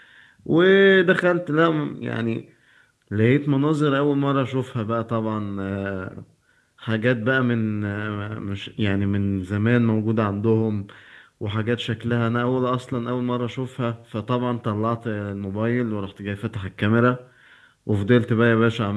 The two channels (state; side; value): identical; both; correlation 1.00